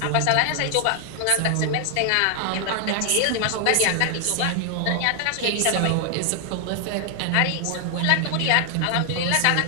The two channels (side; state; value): both; different; correlation 0.00